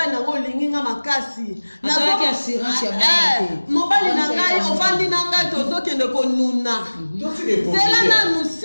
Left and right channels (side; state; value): both; inverted; correlation -1.00